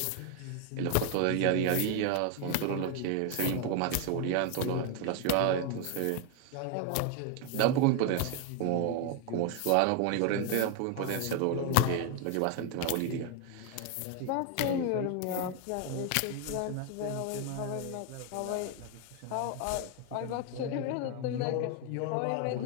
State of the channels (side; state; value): both; different; correlation 0.00